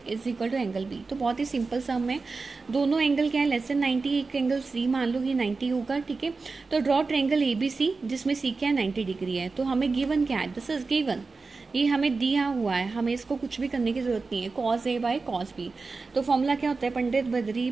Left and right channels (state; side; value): quieter; left; 4.1 dB